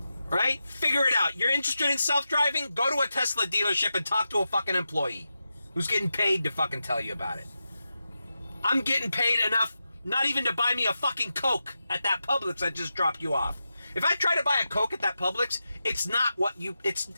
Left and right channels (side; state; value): both; inverted; correlation -0.90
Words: Right? Figure it out. You're interested in self-driving? Go to a Tesla dealership and talk to a fucking employee who's getting paid to fucking tell you about it. I'm getting paid enough not even to buy me a fucking Coke at that Publix I just dropped you off. If I try to buy a Coke at that Publix, it's not